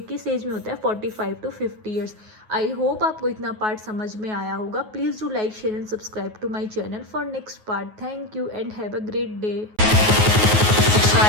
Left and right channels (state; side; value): late; left; 9.4 ms